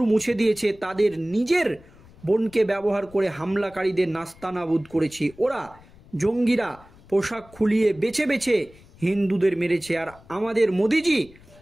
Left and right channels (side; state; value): left; noise; rumble, 24 dB below the sound